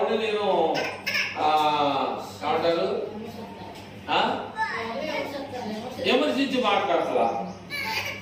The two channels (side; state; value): both; identical; correlation 1.00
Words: నేను ఏమంటారు విమర్శించి మాట్లాడతా.